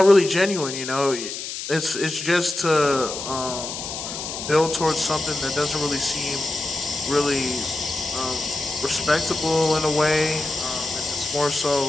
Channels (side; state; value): left; noise; hiss, 7 dB below the sound